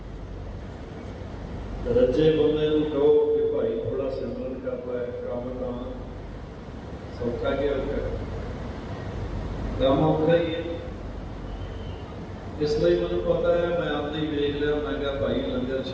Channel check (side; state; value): both; identical; correlation 1.00